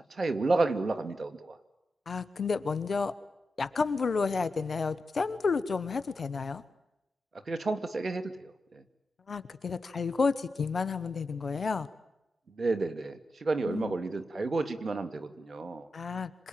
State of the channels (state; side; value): normal; both; correlation 0.88